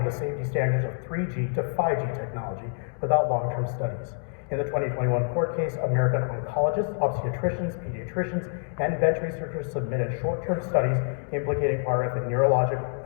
the safety standards of 3G to 5G technology without long-term studies. In the 2021 court case, American oncologists, obstetricians, pediatricians, and bench researchers submitted short-term studies implicating RF in neurological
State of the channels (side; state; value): right; silent; 60 dB below the other